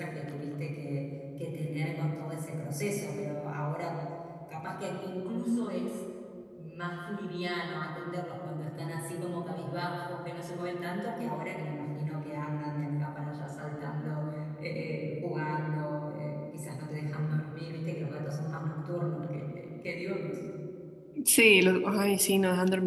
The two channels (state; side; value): identical; both; correlation 1.00